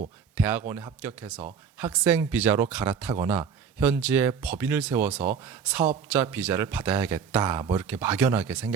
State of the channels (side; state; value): left; quieter; 6.8 dB